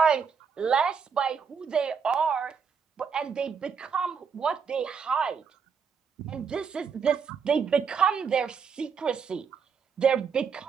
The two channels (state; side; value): quieter; left; 6.3 dB